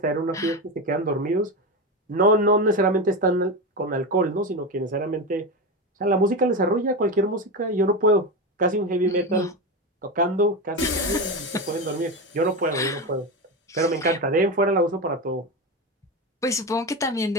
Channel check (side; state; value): both; normal; correlation 0.17